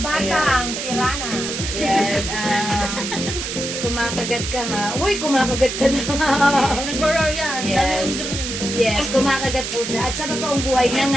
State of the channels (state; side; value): noise; right; hiss, 5 dB below the sound